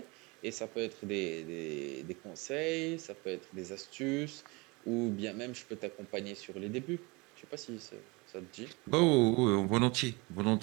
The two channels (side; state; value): left; quieter; 26.3 dB